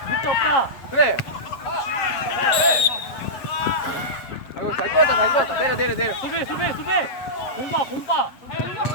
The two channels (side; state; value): right; late; 7.9 ms